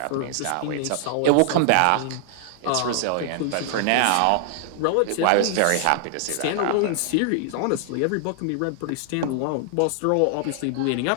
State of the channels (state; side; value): different; both; correlation 0.00